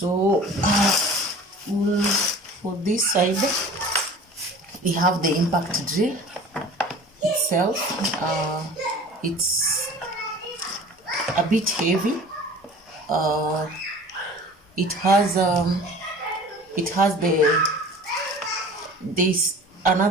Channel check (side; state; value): both; normal; correlation 0.43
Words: for this side, we have the impact drill itself. It's a bit heavy. It has this